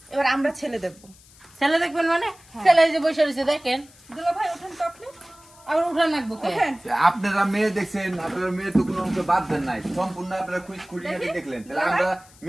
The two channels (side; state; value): left; noise; hiss, 25 dB below the sound